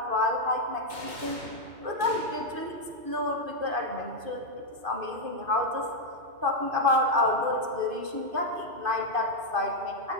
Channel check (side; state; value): left; late; 2.5 ms